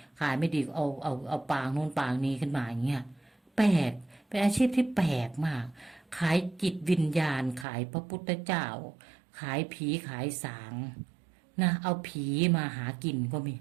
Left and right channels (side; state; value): left; drops out; at 7.7 s